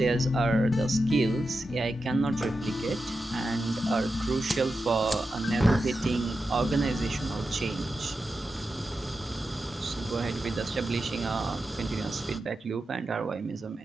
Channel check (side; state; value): both; normal; correlation 0.90